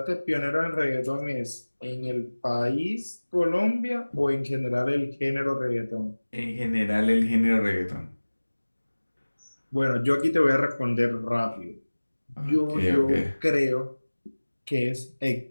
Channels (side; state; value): both; inverted; correlation -1.00